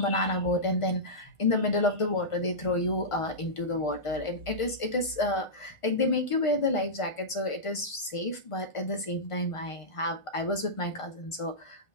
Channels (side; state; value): right; late; 1.5 ms